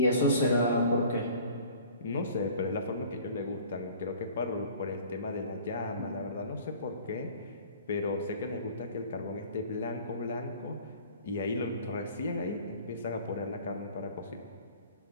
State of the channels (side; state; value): both; inverted; correlation -0.48